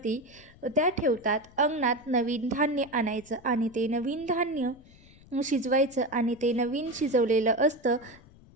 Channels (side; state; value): left; noise; rumble, 24 dB below the sound